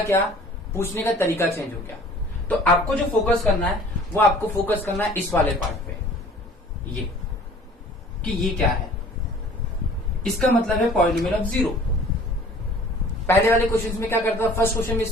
पूछने का तरीका चेंज हो गया। तो आपको जो फोकस करना है वो आपको फोकस करना है इस वाले पार्ट पे, ये कि ये क्या है, इसका मतलब है पॉलिनोमियल ऑफ 0। पहले वाले क्वेश्चन में क्या करता था, फर्स्ट क्वेश्चन में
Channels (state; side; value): normal; both; correlation 0.49